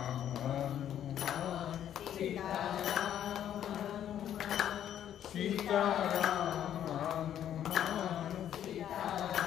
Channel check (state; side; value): quieter; right; 10.4 dB